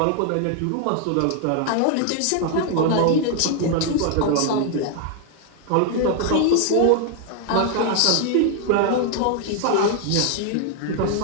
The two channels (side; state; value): both; different; correlation 0.00